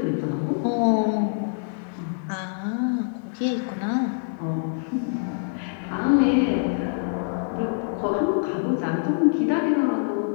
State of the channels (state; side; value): silent; right; digital silence